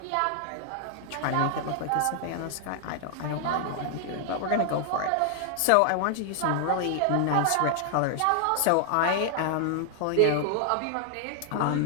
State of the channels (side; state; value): both; different; correlation 0.00